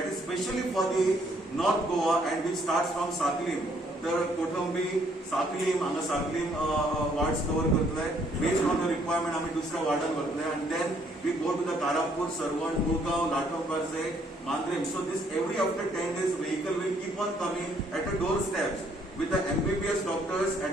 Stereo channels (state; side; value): normal; both; correlation 0.67